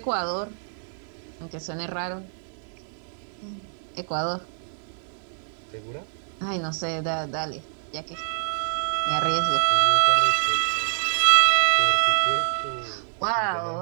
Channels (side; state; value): left; silent; 61 dB below the other